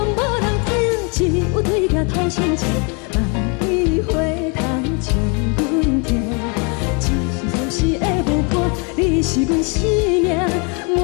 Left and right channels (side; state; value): right; quieter; 34.1 dB